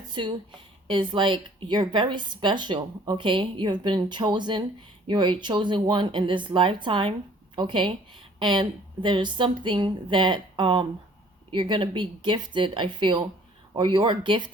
is like you're very special, okay? You have been chosen. You're a chosen one in this lifetime, okay? And there's something that you're going to be gifted, I feel, or you're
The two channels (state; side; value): normal; both; correlation 0.55